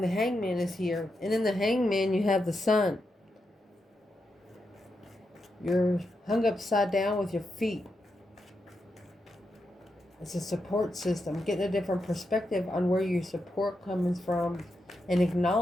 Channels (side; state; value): both; normal; correlation 0.86